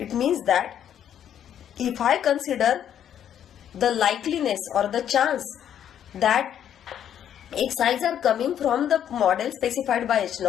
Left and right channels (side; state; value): right; quieter; 9.8 dB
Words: means that if I consider the likeliness or the chance that Xi's are coming from the model specified by H